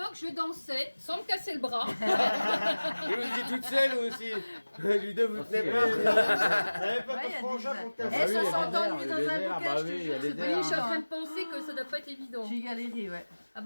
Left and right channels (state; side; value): inverted; both; correlation -1.00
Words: je dansais sans me casser le bras. Et vous étiez toute seule aussi. Ludo, vous tenez pas. T'avais pas Ouais, il y de a frangin des- pour te Eh, casser. ça s'entend lui dans un bouquet, bah je te oui, il y jure, a c'est des pas Oui, je suis en évident. train de penser que ça doit pas être évident. J'ai galéré, ouais. Ah